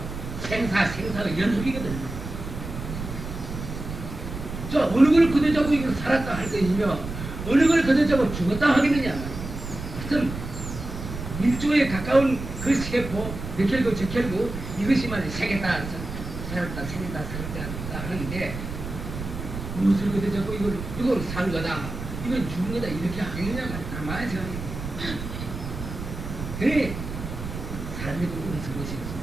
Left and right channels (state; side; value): noise; right; rumble, 8 dB below the sound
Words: 생사가 연속이거든요. 저 어느 걸 거둬잡고 이걸 살았다 할 것이며 어느 걸 거둬잡고 죽었다 하겠느냐. 하여튼 밀조에 가까운 그 세포 몇결구 저결구 이것이 말이야 생겼다 살았다 하는데 무엇을 거둬잡고 이걸 산 거다 이건 죽은 거다 이렇게 하겠느냐 말이야. 가만히 생각해. 그래 사람이 그런 것이